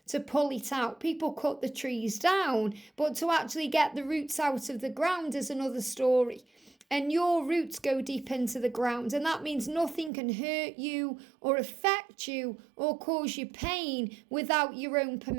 to pull it out. People cut the trees down, but to actually get the roots out of the ground is another story. And your roots go deep into the ground, and that means nothing can hurt you or affect you or cause you pain without your own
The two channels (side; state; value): left; drops out; at 10.1 s